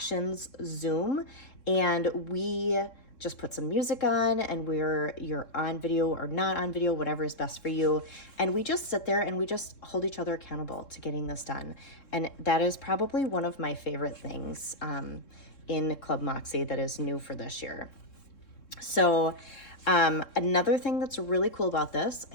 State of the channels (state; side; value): late; right; 3.6 ms